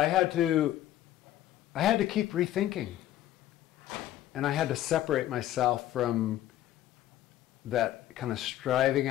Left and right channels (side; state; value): right; quieter; 13.2 dB